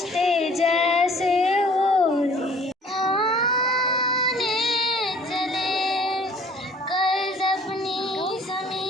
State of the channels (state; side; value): normal; both; correlation 0.53